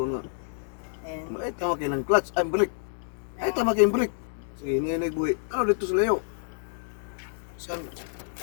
na. And Ay tama kayo ng clutch, ay brake. Ay tama kayo ng brake. Sige, ngayon nagbuhi. Ano dito sa layo? Saan?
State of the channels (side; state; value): right; silent; digital silence